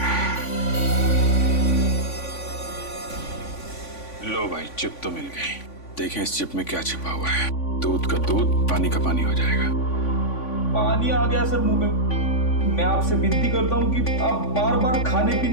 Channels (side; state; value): right; late; 3.5 ms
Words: लो भाई, चिप तो मिल गई। देखें इस चिप में क्या छिपा हुआ है। दूध का दूध, पानी का पानी हो जाएगा। पानी आ गया सर मुंह में। मैं आपसे विनती करता हूँ कि आप बार बार खाने